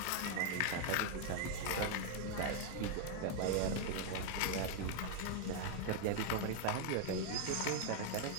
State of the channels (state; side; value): different; both; correlation 0.00